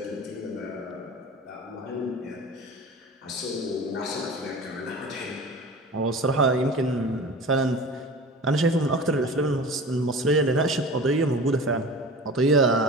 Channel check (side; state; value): both; normal; correlation 0.36